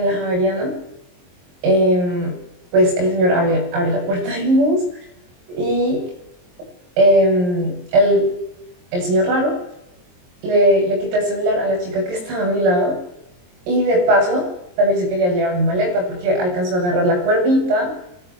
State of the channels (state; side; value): late; left; 22 ms